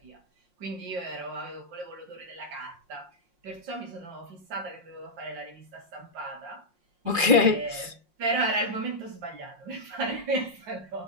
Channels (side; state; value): left; late; 5.6 ms